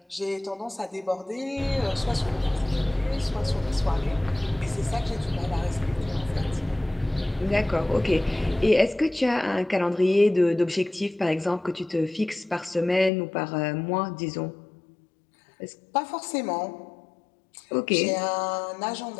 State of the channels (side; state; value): right; drops out; at 13.1 s